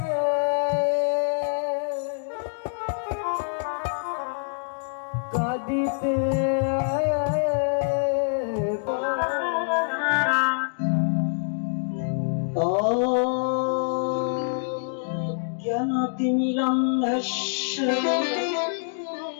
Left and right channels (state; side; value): silent; right; digital silence